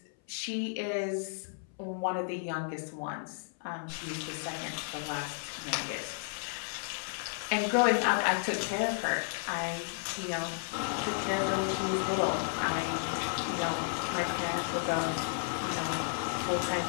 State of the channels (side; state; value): right; silent; 56 dB below the other